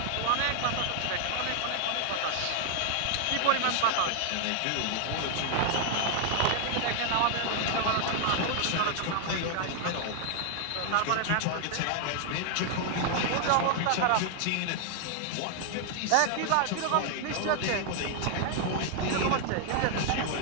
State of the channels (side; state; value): both; different; correlation 0.00